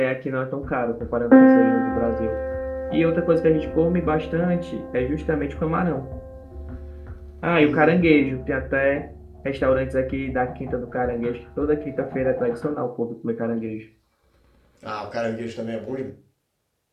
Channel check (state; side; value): identical; both; correlation 1.00